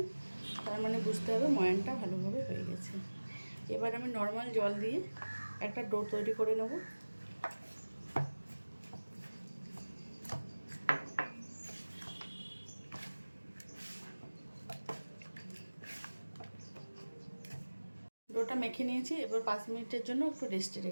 তার মানে বুঝতে হবে ময়ানটা ভালোভাবে হয়ে গেছে। এবার আমি নর্মাল জল দিয়ে একটা ডো তৈরি করে নেব। ডোটা মেখে নিয়েছি, এবার 5 মিনিটের জন্য একটু রেস্টে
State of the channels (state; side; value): inverted; both; correlation -1.00